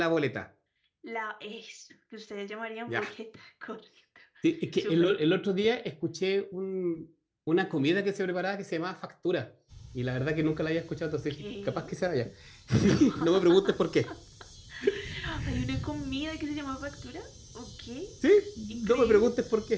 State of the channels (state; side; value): identical; both; correlation 1.00